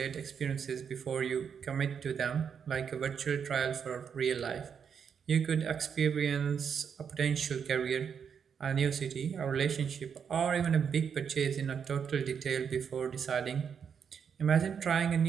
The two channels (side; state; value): left; quieter; 7.1 dB